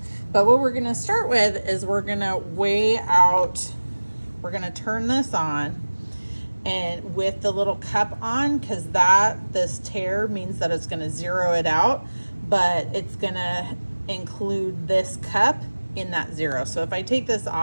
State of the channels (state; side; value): inverted; both; correlation -1.00